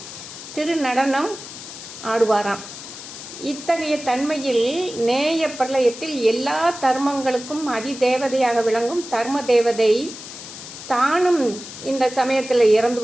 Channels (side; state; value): left; noise; hiss, 12 dB below the sound